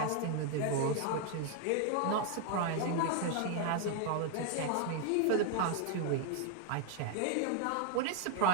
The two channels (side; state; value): both; different; correlation 0.00